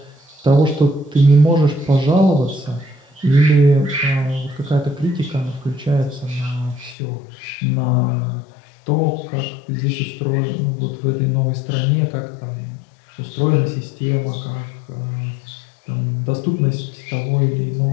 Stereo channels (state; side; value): drops out; right; at 7.0 s